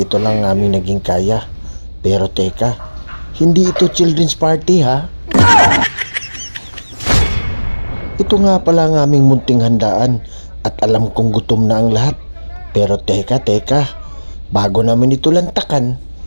ito lang aming naging kaya. Pero teka, hindi ito children's party ha. Ito nga pala ang aming munting handaan at alam kong gutom na ang lahat. Pero teka, bago namin ito lantakan,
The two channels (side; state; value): both; inverted; correlation -1.00